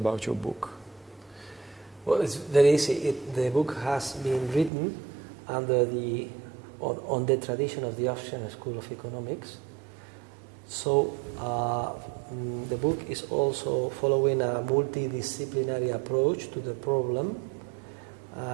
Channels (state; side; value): drops out; left; at 4.7 s